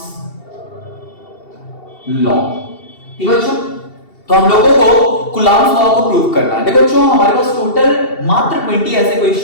law। ठीक है बच्चों, तो हम लोगों को Coulomb's law को प्रूव करना है। देखो बच्चों, हमारे पास टोटल मात्र 20 ऐसे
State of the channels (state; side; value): late; right; 2.7 ms